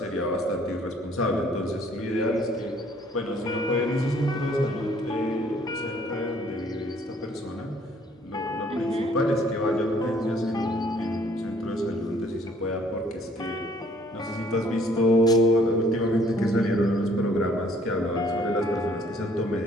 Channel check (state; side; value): normal; both; correlation 0.61